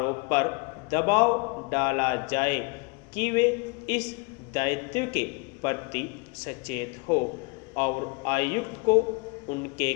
पर दबाव डाला जाए कि वे इस दायित्व के प्रति सचेत हो और आयुक्त को उनके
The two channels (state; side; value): quieter; right; 29.5 dB